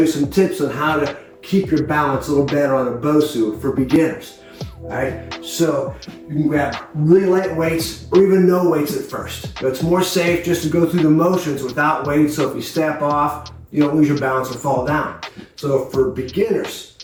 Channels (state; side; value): identical; both; correlation 1.00